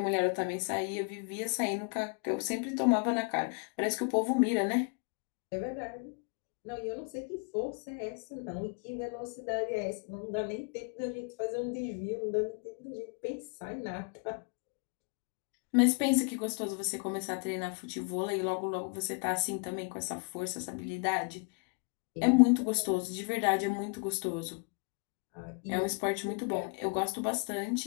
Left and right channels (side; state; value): right; quieter; 37.4 dB